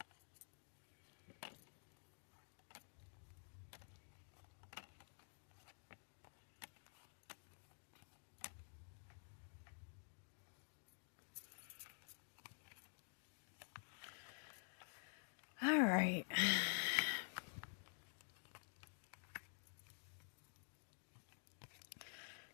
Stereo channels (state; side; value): silent; right; digital silence